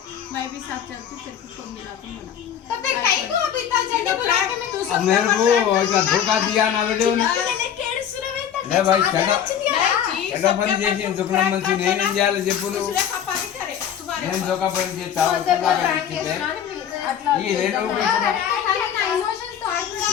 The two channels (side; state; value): right; quieter; 9.1 dB